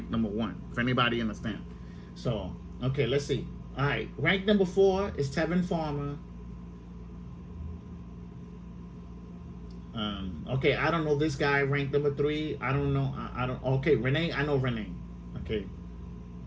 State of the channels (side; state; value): both; identical; correlation 1.00